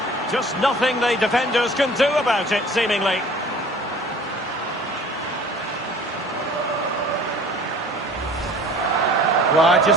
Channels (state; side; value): normal; both; correlation 0.47